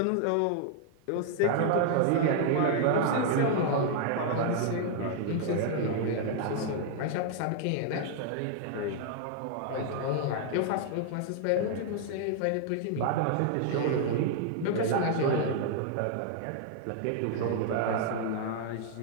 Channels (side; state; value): both; different; correlation 0.00